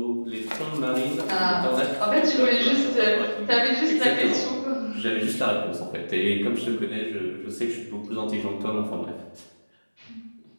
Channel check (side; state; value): both; inverted; correlation -1.00